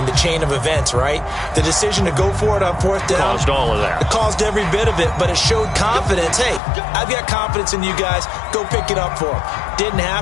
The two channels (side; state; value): right; drops out; at 6.6 s